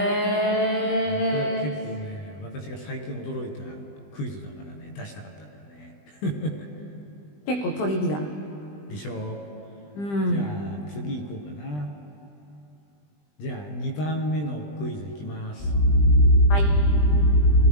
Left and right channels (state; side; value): late; right; 20 ms